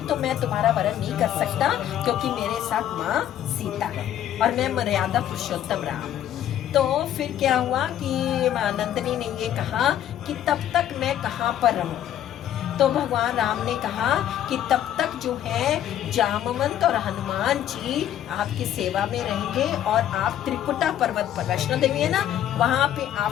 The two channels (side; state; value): right; quieter; 11.1 dB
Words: तो मैं तुम्हारा वरण नहीं कर सकता क्योंकि मेरे साथ माँ सीता है और मैं मर्यादा पुरुषोत्तम राम। तो फिर क्या हुआ कि नंदनी ने ये कहा कि तब तक मैं कहाँ पर रहूं। तो भगवान राम ने कहा कि तब तक जो है जामवंत और हनुमान जी आपकी सेवा में रहेंगे और आप त्रिकुटा पर्वत पर, वैष्णो देवी है ना, वहां पे